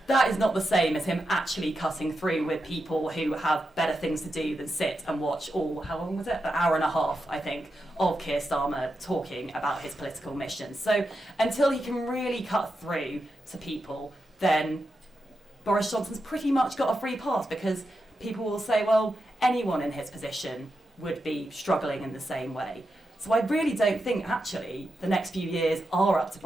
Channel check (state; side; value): normal; both; correlation 0.87